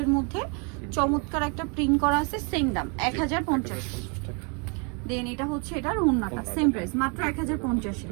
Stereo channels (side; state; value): left; quieter; 34.9 dB